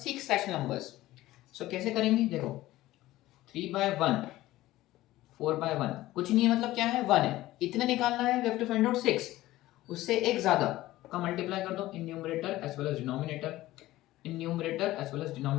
6 rational numbers. So कैसे करेंगे? देखो, 3 by 1, 4 by 1 कुछ नहीं है, मतलब क्या है? 1 है. इतने निकालना है. We have to find out 6. उससे एक ज्यादा का मल्टीप्लाई कर दो in numerator as well as denominator. In numerator as well as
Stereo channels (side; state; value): right; quieter; 16.4 dB